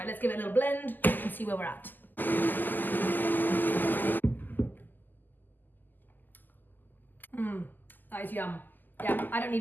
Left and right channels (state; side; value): late; right; 0.087 ms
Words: let's give it a little blend and see where we're at. That is yum. Yeah, I don't